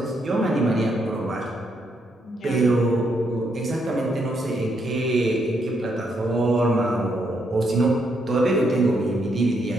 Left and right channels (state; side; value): normal; both; correlation 0.76